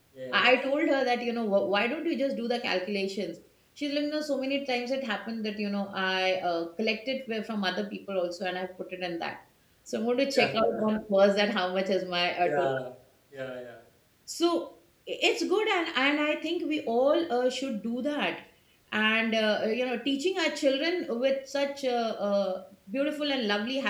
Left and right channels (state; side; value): identical; both; correlation 1.00